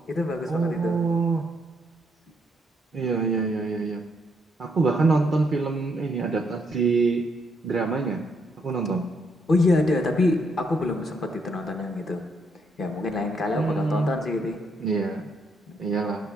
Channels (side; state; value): both; normal; correlation 0.74